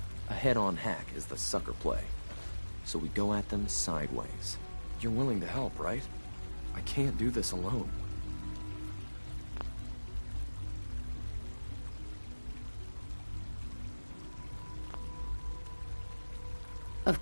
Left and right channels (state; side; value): inverted; both; correlation -1.00